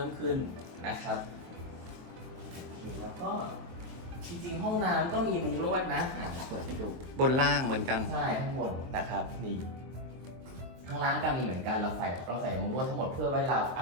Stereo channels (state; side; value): late; left; 23 ms